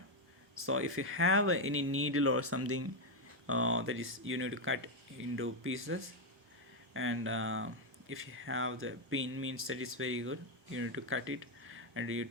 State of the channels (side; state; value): both; normal; correlation 0.04